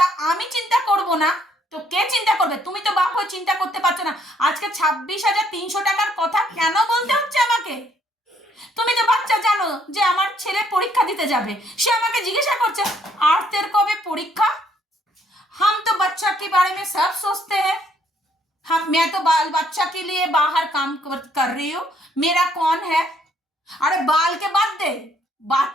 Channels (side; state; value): both; normal; correlation 0.67